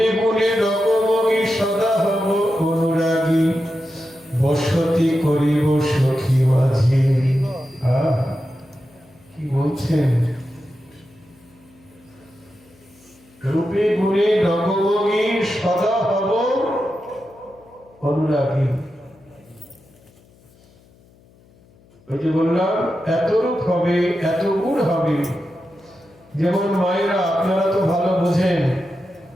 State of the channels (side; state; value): left; noise; hum, 29 dB below the sound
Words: গুণে রকমগি সদা হব অনুরাগী, বসতি করিব সখী মাঝে। কি বলছেন? রূপে গুণে রকমগি সদা হব অনুরাগী। ওই যে বললাম, এত রূপ হবে, এত গুণ হবে। যেমন মায়েরা, আপনারা তো ভালো বোঝেন,